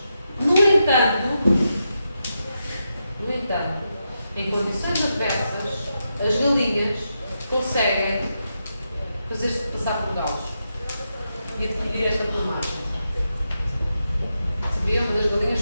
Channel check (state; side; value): inverted; both; correlation -0.86